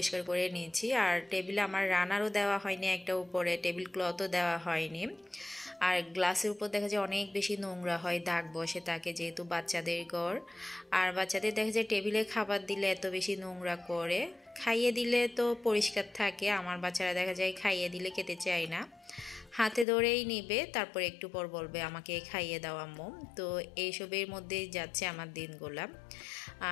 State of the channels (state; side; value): drops out; right; at 19.9 s